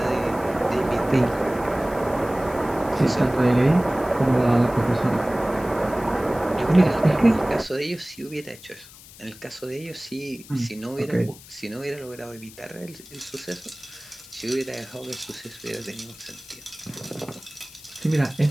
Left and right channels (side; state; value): left; noise; hiss, 19 dB below the sound